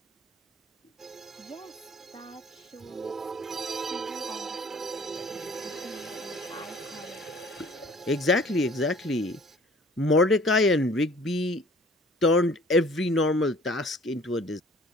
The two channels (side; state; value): both; normal; correlation 0.51